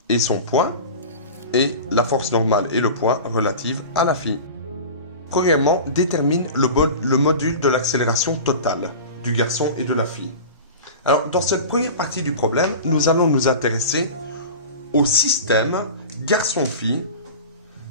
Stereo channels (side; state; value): both; inverted; correlation -0.33